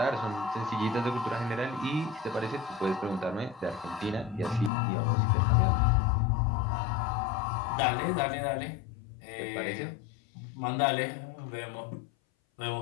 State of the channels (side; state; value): right; drops out; at 4.7 s